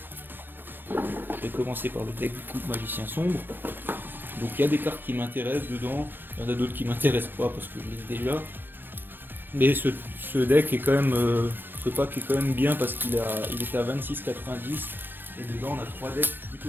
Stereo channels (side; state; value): left; late; 0.096 ms